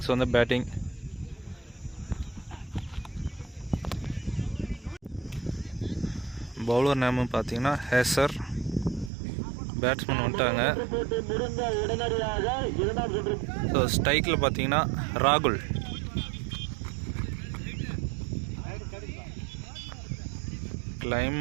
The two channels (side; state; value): left; drops out; at 9.1 s